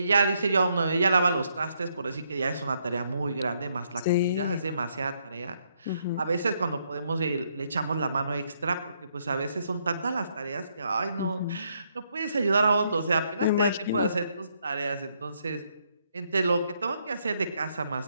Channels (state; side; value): inverted; both; correlation -0.74